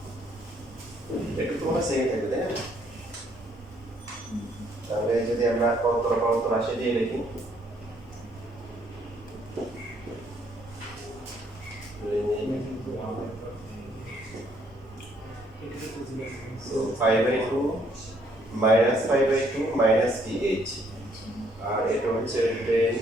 একটু তোমার সেম থাকবে তাই না তাহলে যদি আমরা কত রাশি দিয়ে লিখি so 5/2 minus 5/2 minus ph আর এটা হচ্ছে 10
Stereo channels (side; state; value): both; normal; correlation 0.67